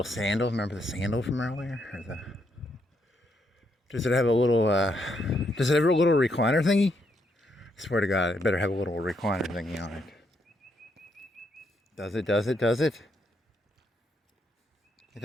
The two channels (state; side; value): normal; both; correlation 0.76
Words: sandal. Remember the sandal from earlier? Does it have a little recliner thingy? I swear to God, it better have a little recliner thingy on it. Does it? It